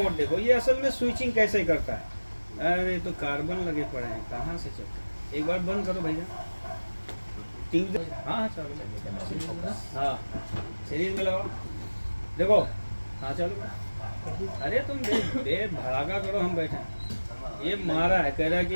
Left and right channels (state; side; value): inverted; both; correlation -1.00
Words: देखो, ये असल में स्विचिंग कैसे करता है। अरे तो कार्बन लगे पड़े हैं, कहाँ से चलता है? एक बार बंद करो भैया ट्यूब। हाँ चलो, हाँ सीरीज में लगाओ, देखो हाँ चलो। अरे तुम भड़ाका करो, हम बैठे हैं। ये मारा है, कह रहा है